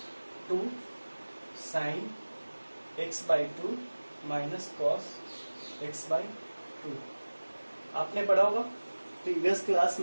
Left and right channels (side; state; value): both; inverted; correlation -1.00